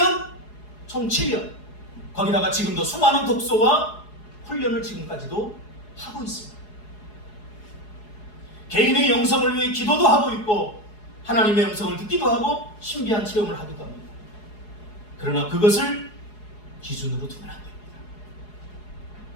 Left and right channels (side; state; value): right; late; 4.8 ms